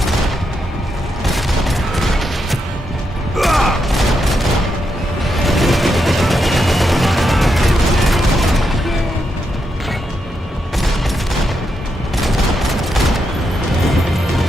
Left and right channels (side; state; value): both; normal; correlation 0.83